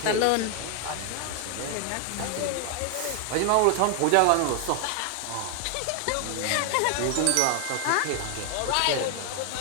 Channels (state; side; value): different; both; correlation 0.00